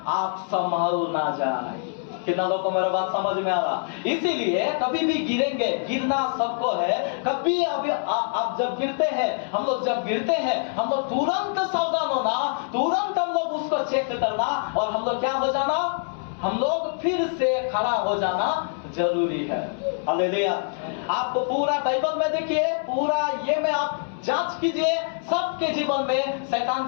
आप संभल ना जाए। कितना लोगों को मेरा बात समझ में आ रहा? इसीलिए कभी भी गिरेंगे, गिरना सबको है। कभी अभी आप जब गिरते हैं, हम लोग जब गिरते हैं, हम लोग तुरंत सावधान होना, तुरंत हम लोग उसको चेक करना, और हम लोग क्या हो जाना? हम लोग फिर से खड़ा हो जाना जरूरी है। हालेलुया। आप पूरा बाइबल में देखिए, पूरा ये में आप जांच कीजिए, सबके जीवन में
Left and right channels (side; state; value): right; silent; 62 dB below the other